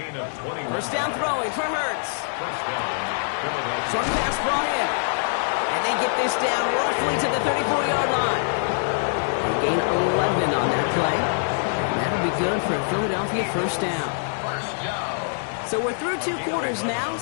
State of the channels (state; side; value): silent; right; digital silence